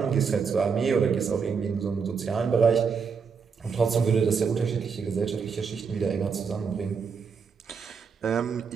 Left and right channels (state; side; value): quieter; left; 5.9 dB